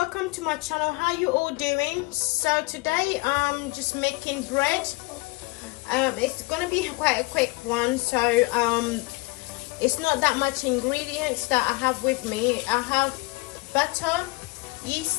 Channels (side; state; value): right; quieter; 24.3 dB